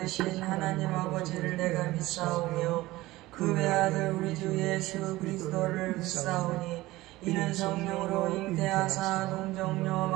하나님 아버지를 내가 믿사오며 그 외아들 우리 주 예수 그리스도를 믿사오니 이는 성령으로 잉태하사 하사 동정녀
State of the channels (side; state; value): left; quieter; 18.3 dB